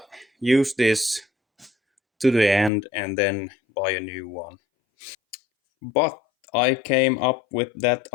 use this to the end and then buy a new one. But I came up with that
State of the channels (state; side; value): drops out; right; at 2.7 s